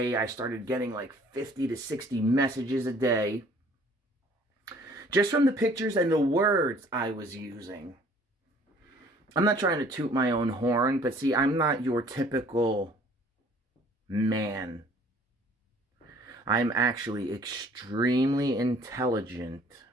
I started getting like 50 to 60 messages a day. Just from the pictures and the words I was using. I'm not trying to toot my own horn, but see, I'm not your typical man. I'm actually extremely intelligent.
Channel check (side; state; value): both; normal; correlation 0.55